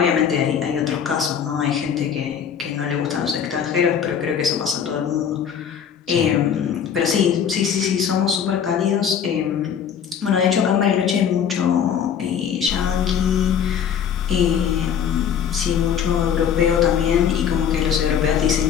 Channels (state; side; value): quieter; right; 8.0 dB